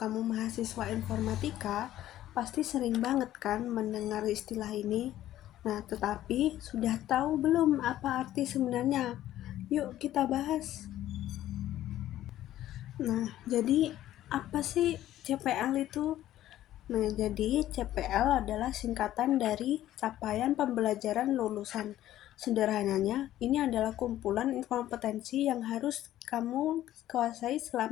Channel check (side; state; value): right; quieter; 13.3 dB